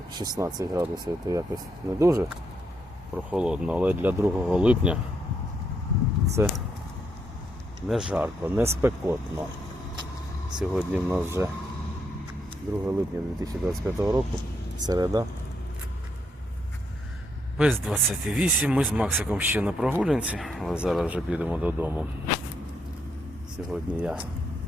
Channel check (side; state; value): both; normal; correlation 0.77